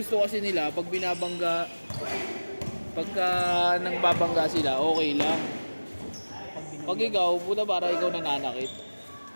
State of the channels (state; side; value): inverted; both; correlation -1.00